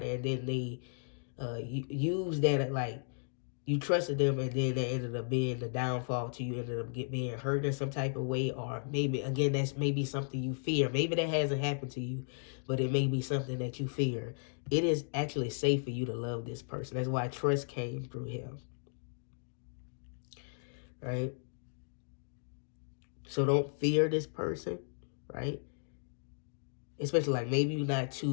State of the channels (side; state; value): right; silent; digital silence